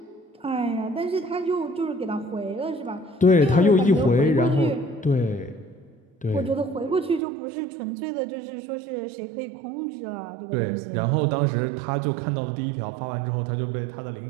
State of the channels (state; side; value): drops out; left; at 7.2 s